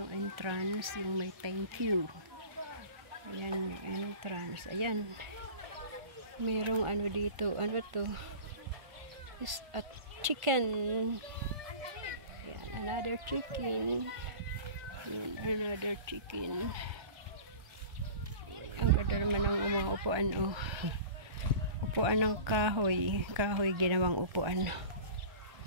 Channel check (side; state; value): left; late; 1.5 ms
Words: entrance, yung may thank you. Ayan yung entrance. Ayan. Merong dito. Ano to? Is a chicken. Ayan, another chicken. Ayan, another chicken. Ang ganda naman ng mga upuan. Upuan ng kahoy. Kahoy ginawang upuan.